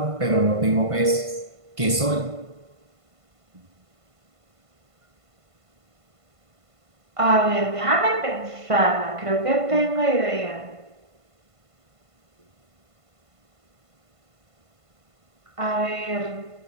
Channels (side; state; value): left; late; 1.5 ms